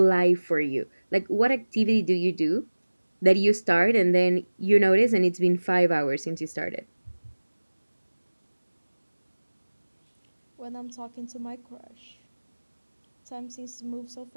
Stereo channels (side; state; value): both; inverted; correlation -1.00